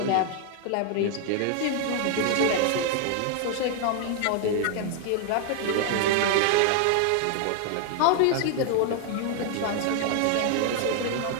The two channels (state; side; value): different; both; correlation 0.00